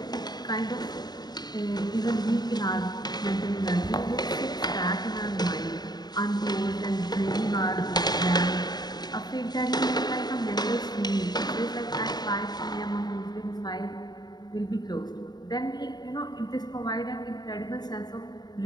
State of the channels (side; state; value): right; late; 0.20 ms